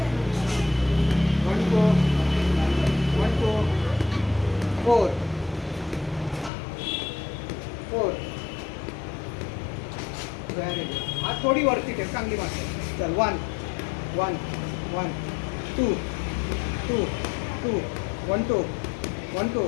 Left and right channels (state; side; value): drops out; right; at 6.5 s